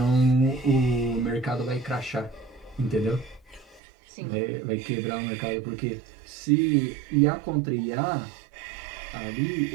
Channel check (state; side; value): drops out; left; at 3.8 s